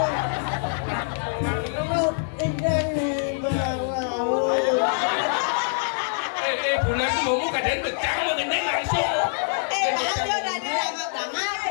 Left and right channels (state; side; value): silent; right; digital silence